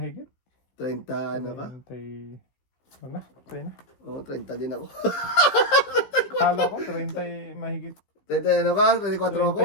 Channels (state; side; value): late; right; 15 ms